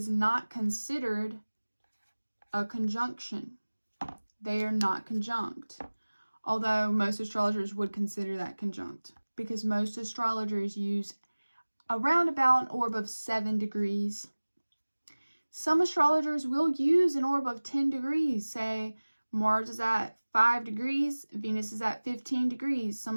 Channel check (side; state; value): both; inverted; correlation -1.00